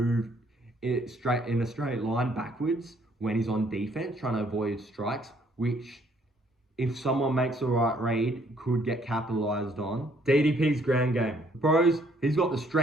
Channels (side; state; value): both; normal; correlation 0.65